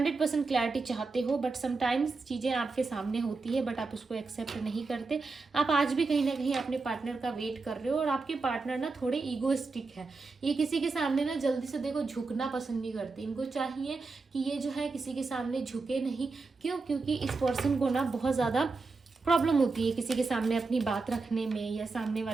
क्लैरिटी चाहते हो, बट समटाइम्स चीज़ें आपके सामने होती है बट आप उसको एक्सेप्ट नहीं करते। आप आज भी कहीं ना कहीं अपने पार्टनर का वेट कर रहे हो, और आपके पार्टनर ना थोड़े ईगोइस्टिक है। ये किसी के सामने ना जल्दी से देखो झुकना पसंद नहीं करते। इनको चाहिए कि ये जो है किसी के सामने झुके नहीं। क्यों? क्योंकि इस पर्सन को ना बहुत ज़्यादा प्रॉब्लम होती है किसी के सामने अपनी बात रखने में या सामने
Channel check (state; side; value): quieter; left; 4.0 dB